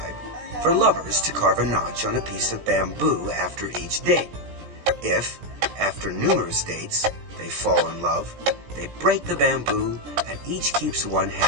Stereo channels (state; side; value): late; left; 17 ms